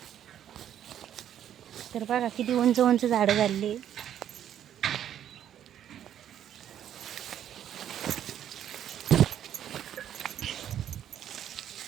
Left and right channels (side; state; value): left; quieter; 10.3 dB